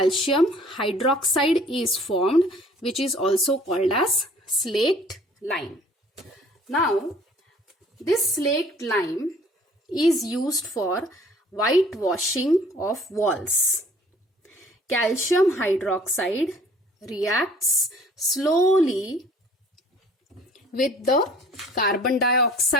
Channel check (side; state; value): both; normal; correlation 0.54